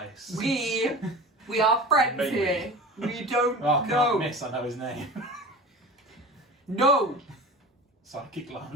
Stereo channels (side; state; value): both; normal; correlation 0.34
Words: We are friends Maybe. here. We don't Oh, I can't know. miss, I know his name. No. Psychic